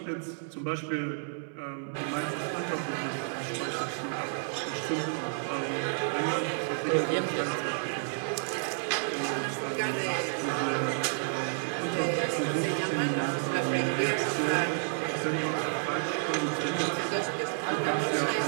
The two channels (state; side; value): silent; left; 57 dB below the other